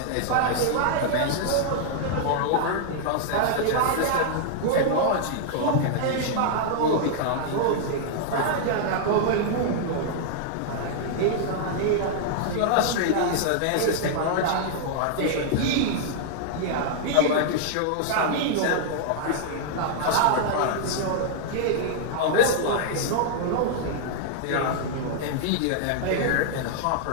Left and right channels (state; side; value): different; both; correlation -0.01